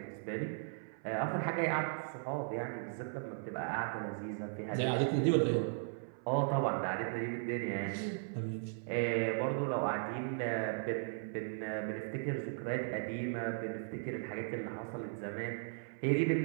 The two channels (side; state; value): left; silent; 53 dB below the other